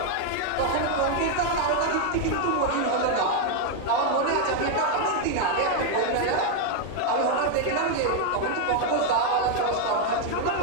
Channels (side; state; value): both; different; correlation 0.01